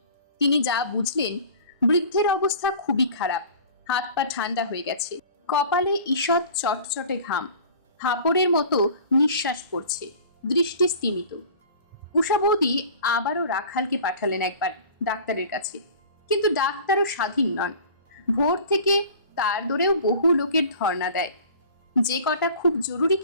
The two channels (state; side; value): inverted; both; correlation -0.43